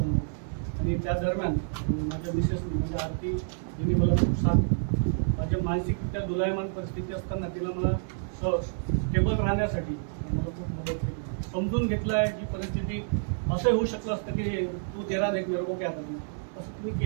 आणि त्या दरम्यान माझ्या मिसेसने म्हणजे आरती जिने मला खूप साथ माझ्या मानसिकरित्या दोलायमान परिस्थिती असताना तिला मला स्टेबल राहण्यासाठी मला खूप मदत केली. समजून घेतलं आहे की परिस्थिती असं होऊ शकलं असतं की तू तेरा देख मेरे को क्या करणार असं तुम्ही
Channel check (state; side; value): silent; left; digital silence